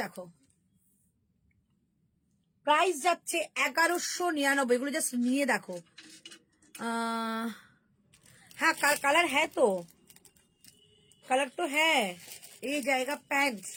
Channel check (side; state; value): both; identical; correlation 1.00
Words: দেখো, প্রাইস যাচ্ছে 1199। এগুলো জাস্ট নিয়ে দেখো। হ্যাঁ কালার হ্যাঁ, তো কালার তো হ্যাঁ। এই জায়গা প্যান্ট